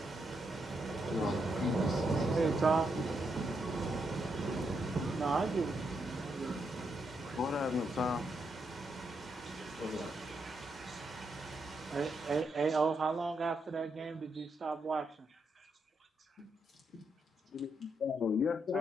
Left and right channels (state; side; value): normal; both; correlation 0.80